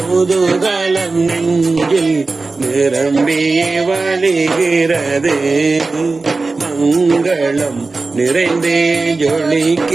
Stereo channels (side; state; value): left; quieter; 3.7 dB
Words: நெஞ்சில் நிரம்பியே வழிகிறது. மங்களம் நிறைந்தே